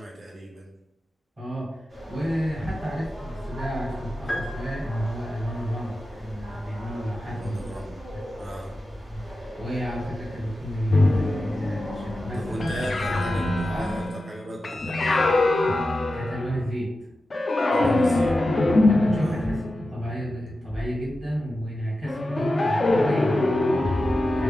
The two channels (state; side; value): normal; both; correlation 0.92